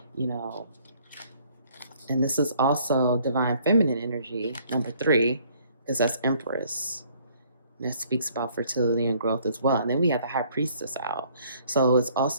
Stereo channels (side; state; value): both; inverted; correlation -0.61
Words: and this is also divine feminine energy, number 3, because that's Empress. And that speaks about fertility and growth as well. And then we have the High Priestess out. So it's